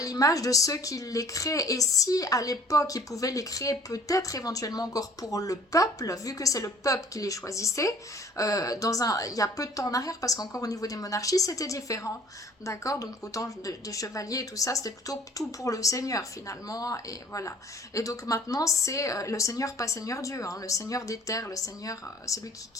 de ceux qui les créent. Et si à l'époque ils pouvaient les créer peut-être éventuellement encore pour le peuple, vu que c'est le peuple qui les choisissait, il y a peu de temps en arrière, parce qu'encore au niveau des monarchies c'était différent, d'accord, donc autant des chevaliers et tout ça, c'était plutôt tout pour le seigneur finalement, et voilà. Et donc maintenant c'est le seigneur, pas seigneur Dieu, hein, le seigneur des terres, le seigneur, celui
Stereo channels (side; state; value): both; normal; correlation 0.53